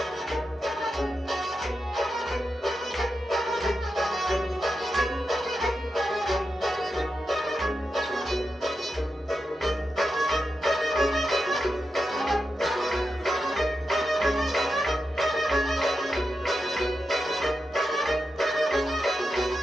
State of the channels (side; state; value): both; normal; correlation 0.88